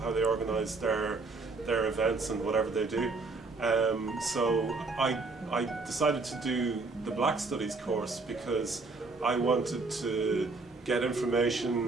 they organise their events and whatever they do. So I decided to do the Black Studies course because I wanted to get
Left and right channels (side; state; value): left; quieter; 3.7 dB